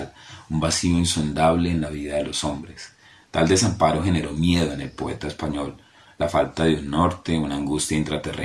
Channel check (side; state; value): both; identical; correlation 1.00